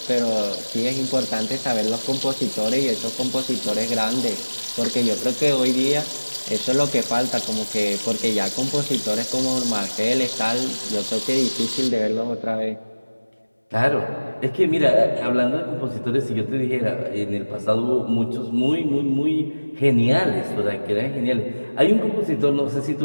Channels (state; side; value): inverted; both; correlation -1.00